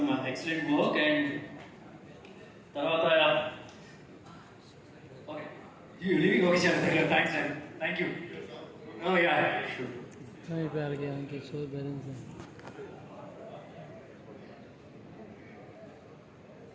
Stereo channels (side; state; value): both; identical; correlation 1.00